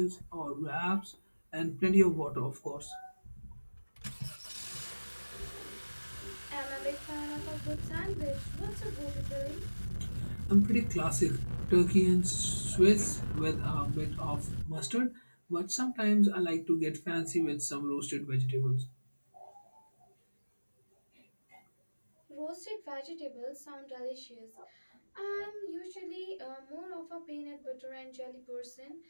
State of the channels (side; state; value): both; inverted; correlation -1.00